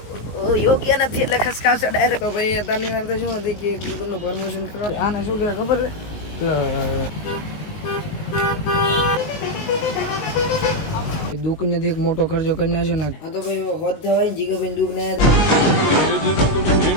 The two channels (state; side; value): late; right; 19 ms